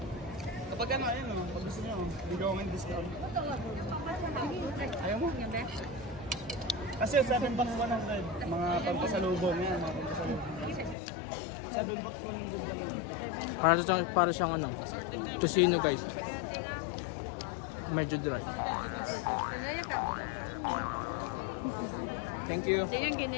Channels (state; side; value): drops out; right; at 11.0 s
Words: Kapag ano, ayun o, pag gusto nyo, bigyan ko ng discount. Ayaw mo? Kasi 7 bucks 100, mga pampasalubong yan, mga pampasalubong. 7 bucks 100. Para siyang ano, tocino guys. Medyo dry. Thank you.